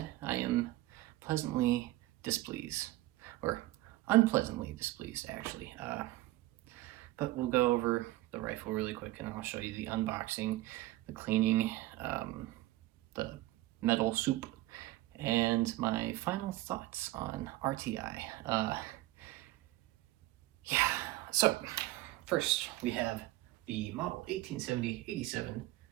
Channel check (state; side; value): quieter; left; 17.6 dB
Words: I am pleasantly displeased, or unpleasantly displeased actually. But we'll go over the rifle really quick and I'll show you the unboxing, the cleaning, the metal soup, and my final thoughts on RTI. Yeah, so first we have the model 1870-87